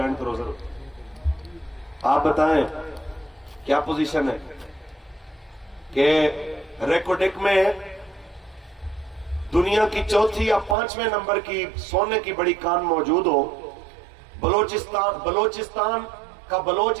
کروزر ہوتا۔ آپ بتائیں کیا پوزیشن ہے کہ ریکوڈک میں دنیا کی چوتھی یا 5ویں نمبر کی سونے کی بڑی کان موجود ہو، بلوچستان کا بلوچ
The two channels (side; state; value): left; drops out; at 10.8 s